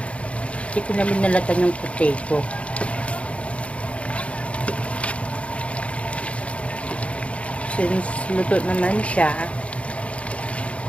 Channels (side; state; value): right; late; 0.062 ms